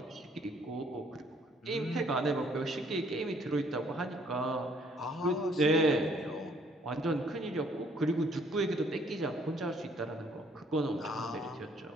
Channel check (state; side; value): normal; both; correlation 0.63